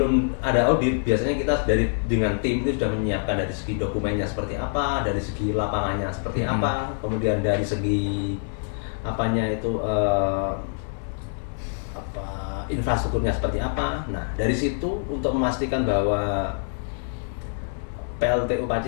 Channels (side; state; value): right; silent; 62 dB below the other